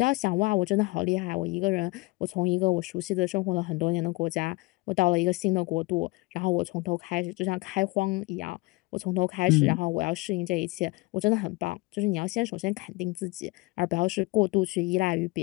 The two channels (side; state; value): right; quieter; 23.8 dB